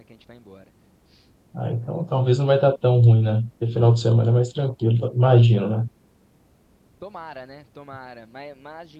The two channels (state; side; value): identical; both; correlation 1.00